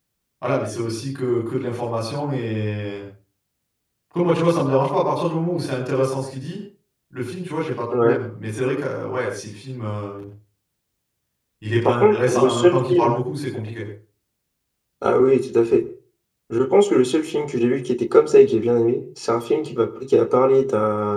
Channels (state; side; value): identical; both; correlation 1.00